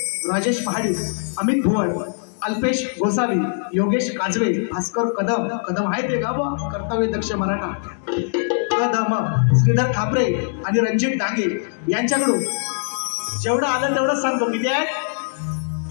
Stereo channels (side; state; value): right; silent; digital silence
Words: राजेश महाडिक, अमित भुवन, अल्पेश गोसावी, योगेश काजवे, भास्कर कदम आहे ते गाव कर्तव्य दक्ष मराठा कदम, श्रीधर खापरे आणि रणजित डांगे यांच्याकडून जेवढं आलं तेवढंच सांगतो. किती आहे